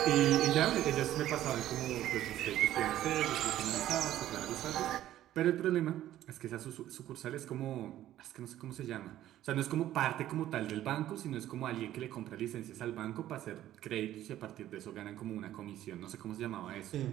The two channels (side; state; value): left; quieter; 13.1 dB